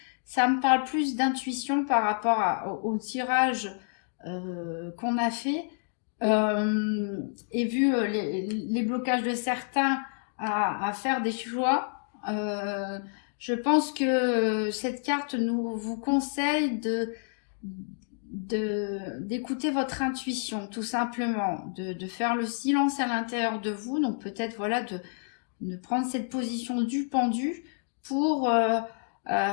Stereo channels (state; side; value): silent; right; digital silence